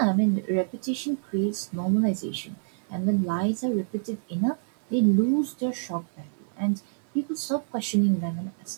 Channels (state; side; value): silent; left; digital silence